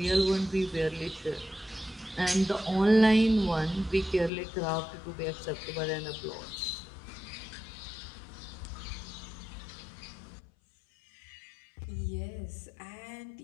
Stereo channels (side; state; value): right; drops out; at 4.3 s